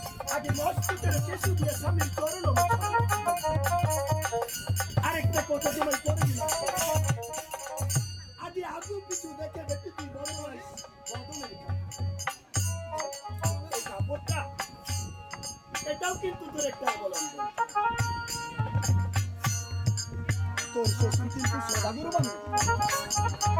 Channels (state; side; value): identical; both; correlation 1.00